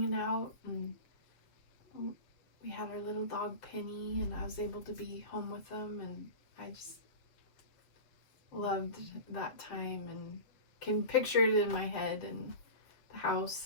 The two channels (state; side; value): late; right; 7.2 ms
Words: out, and we had our little dog Penny, and I was able to be home with them, and loved that time and can picture it in my head, and the